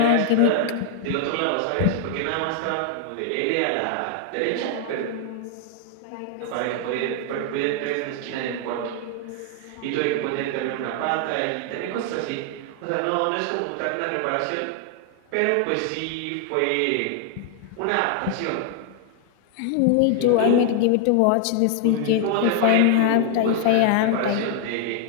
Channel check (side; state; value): both; different; correlation 0.00